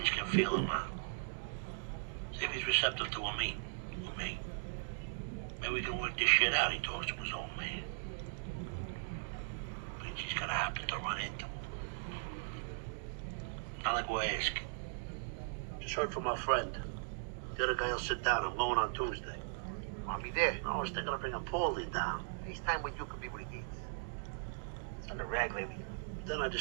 can feel him out. See if he's receptive to a meet with me. Maybe we can work this shit out. He talks to his old man. Beansy's gonna happen to run into him. Not like we're asking. Just heard from my friend. The other guy will sit down. I'm going on Tuesday. I'll be there. I was thinking of bringing Paulie down. FaceTime with you could be what he needs. It's on the rag lately. Then I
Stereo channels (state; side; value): silent; left; digital silence